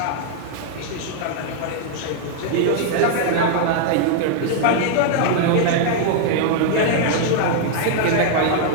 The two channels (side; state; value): both; different; correlation -0.01